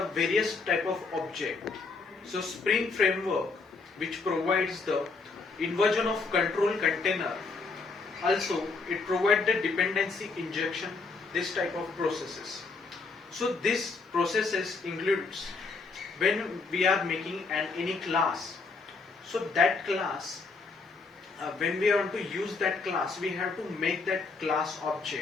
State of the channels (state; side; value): quieter; right; 4.2 dB